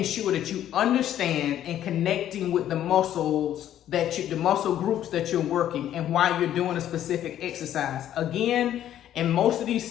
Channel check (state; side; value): quieter; right; 11.4 dB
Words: sure that you understand and connecting with the muscles the muscle groups that you're working and why you're doing a specific exercise. Again, in most of these